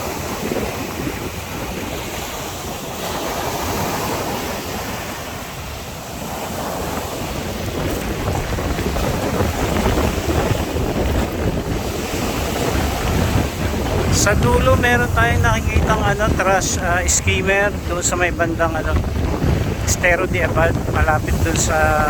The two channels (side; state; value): both; identical; correlation 1.00